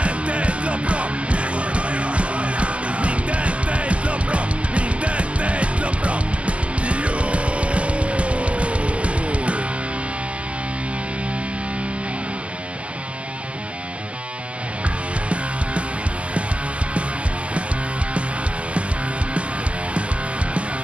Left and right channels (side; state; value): left; late; 0.059 ms